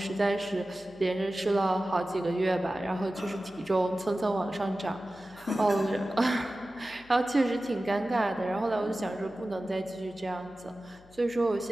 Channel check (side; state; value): left; noise; hum, 25 dB below the sound